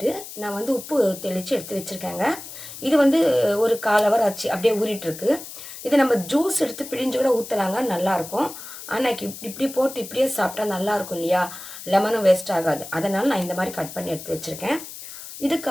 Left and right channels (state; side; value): noise; left; hiss, 13 dB below the sound